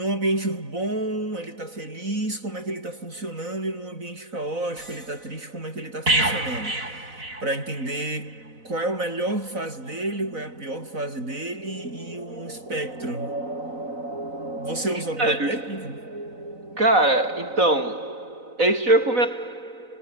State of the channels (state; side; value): late; left; 4.0 ms